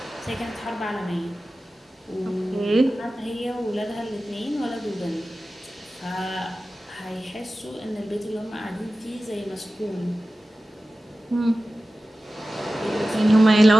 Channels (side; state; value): both; normal; correlation 0.95